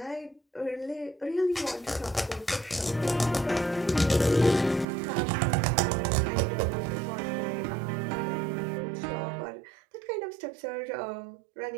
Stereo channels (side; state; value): left; drops out; at 4.9 s